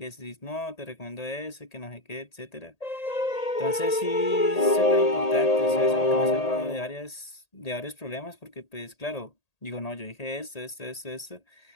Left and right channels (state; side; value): late; right; 1.8 ms